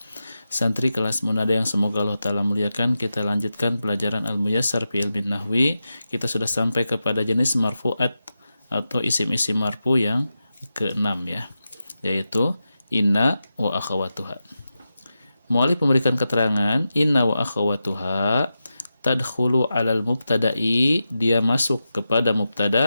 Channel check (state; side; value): inverted; both; correlation -0.91